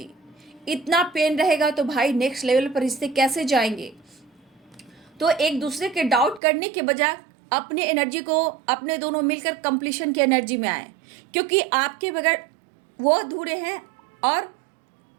इतना पेन रहेगा तो भाई नेक्स्ट लेवल पर रिश्ते कैसे जाएंगे। तो एक दूसरे के डाउट करने के बजाय अपने एनर्जी को, अपने दोनों मिलकर कंप्लीशन की एनर्जी में आए, क्योंकि आपके बगैर वो अधूरे हैं और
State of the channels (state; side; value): drops out; left; at 6.4 s